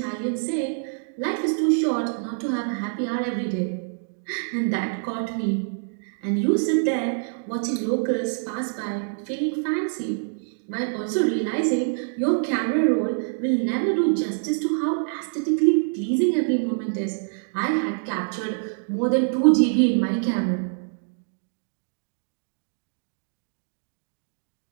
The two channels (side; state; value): left; silent; digital silence